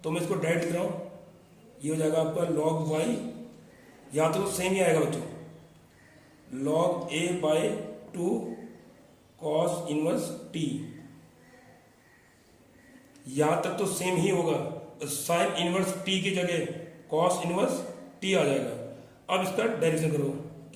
तो मैं इसको डायरेक्ट लिख रहा हूं, ये हो जाएगा आपका लॉग y, यहां तो सेम ही आएगा बच्चों, log a by 2 cos inverse T यहाँ तक तो सेम ही होगा, साइन इनवर्स टी की जगह कॉस इनवर्स टी आ जाएगा। अब इसका डेरिवेशन करो,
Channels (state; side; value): identical; both; correlation 1.00